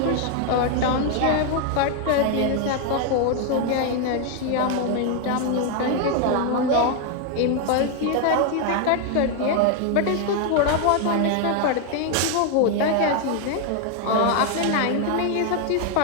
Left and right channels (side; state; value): both; different; correlation 0.00